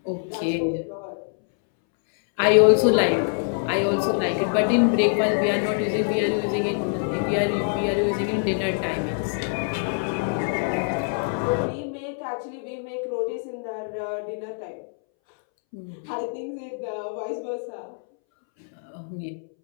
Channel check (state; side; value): silent; right; 62 dB below the other